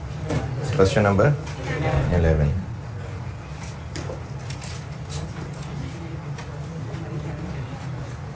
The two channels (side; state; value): both; identical; correlation 1.00